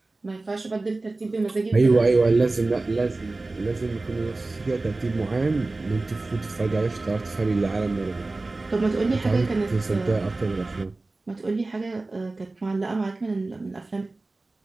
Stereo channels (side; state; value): left; quieter; 3.2 dB